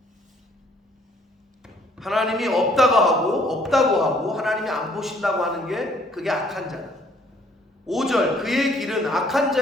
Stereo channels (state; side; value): normal; both; correlation 0.62